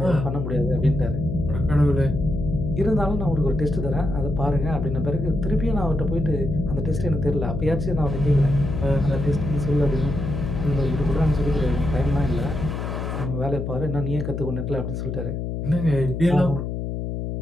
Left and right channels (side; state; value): left; noise; hum, 4 dB below the sound